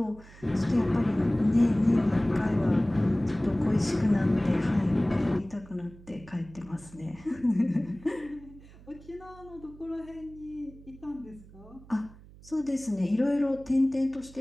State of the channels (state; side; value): noise; right; hum, 21 dB below the sound